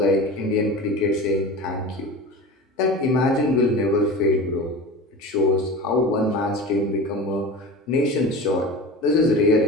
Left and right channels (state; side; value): normal; both; correlation 0.31